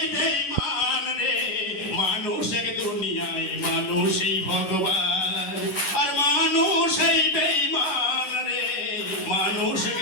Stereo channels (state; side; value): late; right; 11 ms